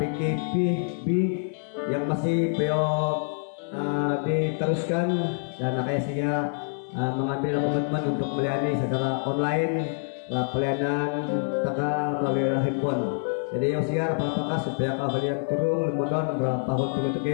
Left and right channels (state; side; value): silent; right; digital silence